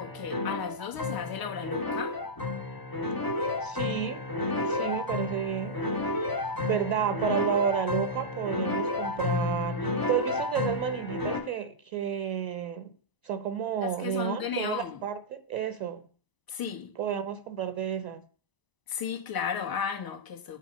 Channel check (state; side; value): late; right; 1.0 ms